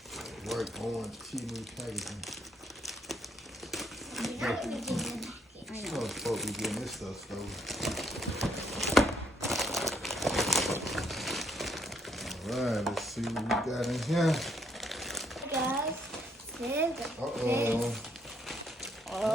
work on Temu packaging. I know it's supposed to be getting this stuff stolen. Alright, let's see what we got in here. Guys, Uh-oh.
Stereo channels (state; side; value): normal; both; correlation 0.71